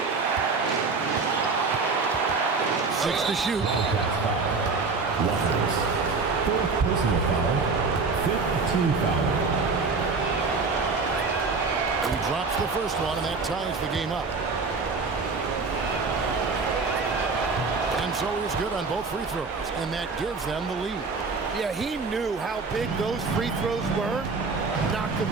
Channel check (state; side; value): quieter; left; 4.3 dB